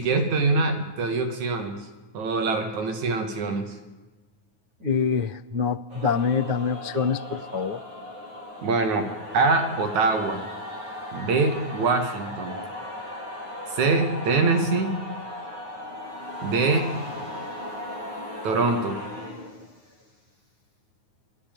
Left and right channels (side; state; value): left; late; 9.4 ms